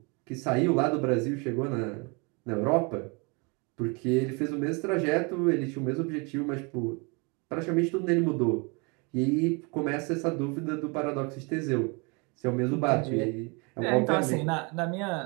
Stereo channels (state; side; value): quieter; left; 30.9 dB